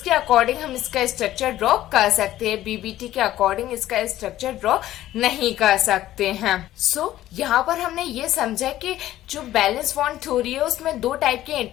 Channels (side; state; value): right; quieter; 14.0 dB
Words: अकॉर्डिंग हम इसका स्ट्रक्चर ड्रॉ कर सकते हैं। बीबीटी के अकॉर्डिंग इसका स्ट्रक्चर ड्रॉ नहीं कर सकते हैं। सो यहाँ पर हमने ये समझा कि जो बैलेंस बॉन्ड थ्योरी है उसमें 2 टाइप के